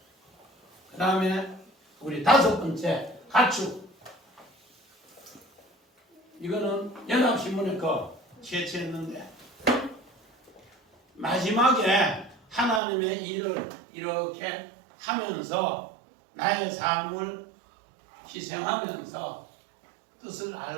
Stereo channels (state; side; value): drops out; left; at 12.8 s